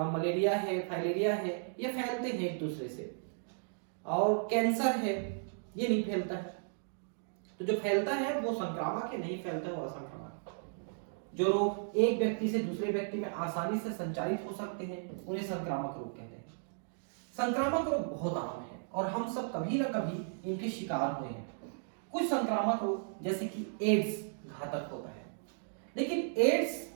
मलेरिया है, फाइलेरिया है, ये फैलते हैं एक दूसरे से। और कैंसर है, ये नहीं फैलता है। तो जो फैलता है वो संक्रामक है, नहीं फैलता वो असंक्रामक। जो रोग एक व्यक्ति से दूसरे व्यक्ति में आसानी से संचारित हो सकते हैं उन्हें संक्रामक रोग कहते हैं। संक्रामक रोग बहुत आम है और हम सब कभी ना कभी इनके शिकार हुए हैं। कुछ संक्रामक रोग जैसे कि एड्स घातक होता है, लेकिन एड्स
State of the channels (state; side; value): silent; left; digital silence